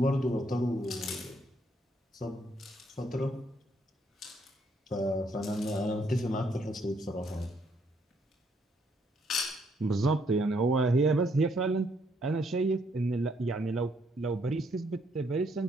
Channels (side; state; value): both; normal; correlation 0.71